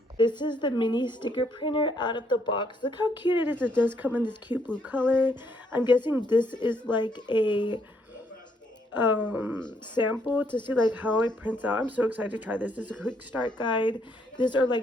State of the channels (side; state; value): both; normal; correlation 0.71